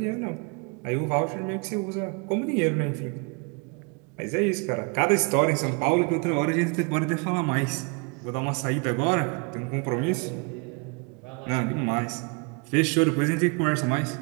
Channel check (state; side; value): quieter; left; 33.7 dB